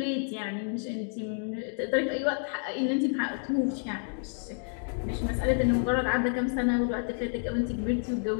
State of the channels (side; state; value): right; silent; 58 dB below the other